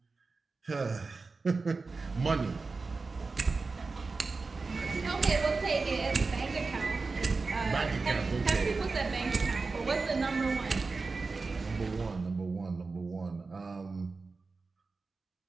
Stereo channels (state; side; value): quieter; left; 4.1 dB